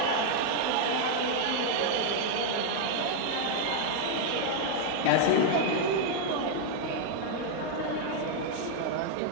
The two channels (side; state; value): both; different; correlation 0.00